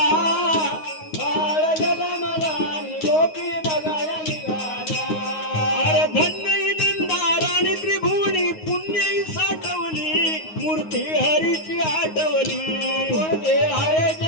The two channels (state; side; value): late; right; 9.5 ms